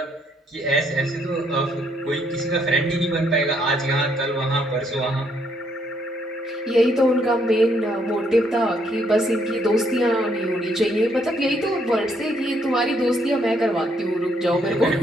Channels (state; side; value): normal; both; correlation 0.71